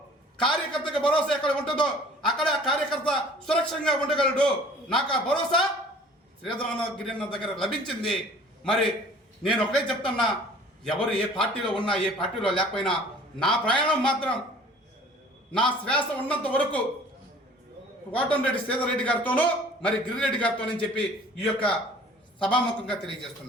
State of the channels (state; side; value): normal; both; correlation 0.49